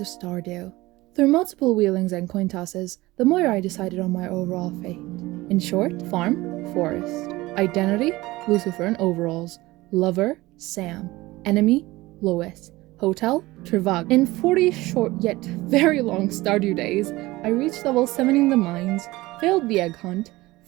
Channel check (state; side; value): quieter; left; 19.5 dB